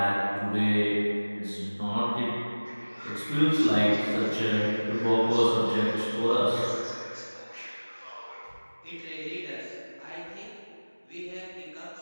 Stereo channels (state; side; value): inverted; both; correlation -1.00